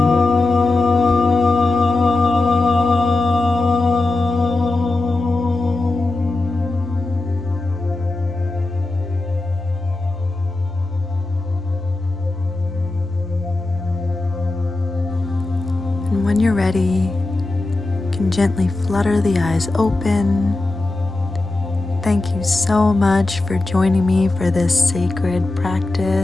And when you're ready, you can gently flutter the eyes open. Thank you so much for joining me for this sacred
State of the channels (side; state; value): right; quieter; 3.0 dB